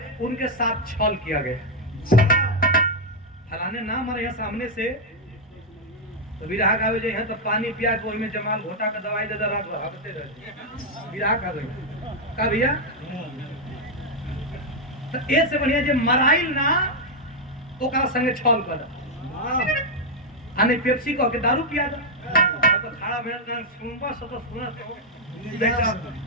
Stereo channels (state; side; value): normal; both; correlation -0.01